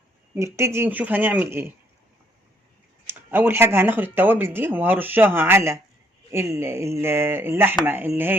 نبتدي نشوف هنعمل ايه. اول حاجه هناخد التوابل دي وهرشها على اللحمه اللي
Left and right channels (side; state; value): both; normal; correlation 0.68